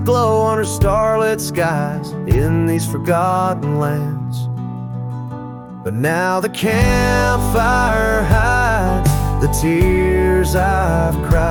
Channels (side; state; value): both; identical; correlation 1.00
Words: glow under starlit skies in these forgotten lands. But now the campfire hides the tears I've